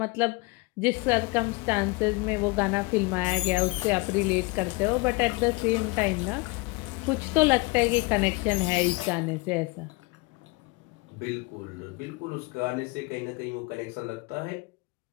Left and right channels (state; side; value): quieter; right; 24.9 dB